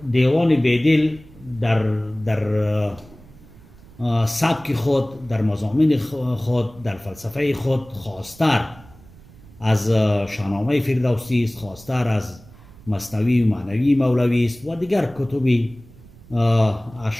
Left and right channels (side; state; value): right; noise; rumble, 22 dB below the sound